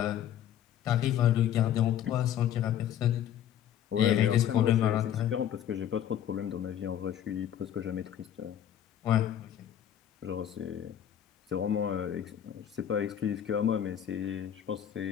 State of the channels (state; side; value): quieter; right; 10.3 dB